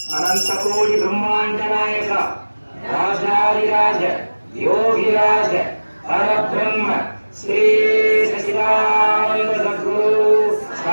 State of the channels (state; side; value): inverted; both; correlation -1.00